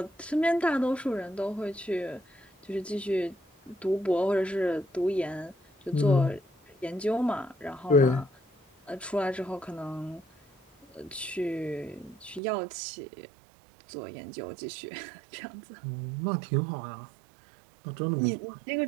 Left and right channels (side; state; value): left; drops out; at 12.4 s